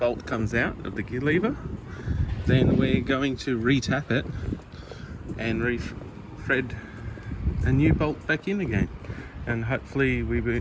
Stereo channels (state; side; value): identical; both; correlation 1.00